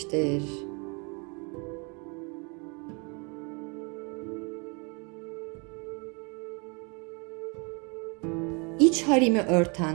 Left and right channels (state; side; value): quieter; left; 32.1 dB